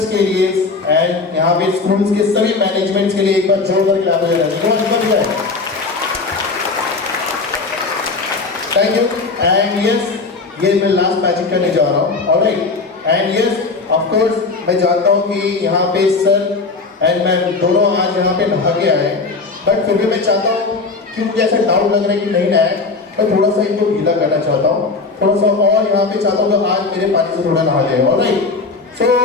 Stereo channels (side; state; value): right; quieter; 4.0 dB